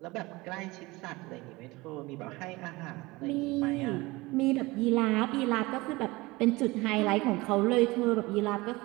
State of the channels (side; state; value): left; quieter; 21.9 dB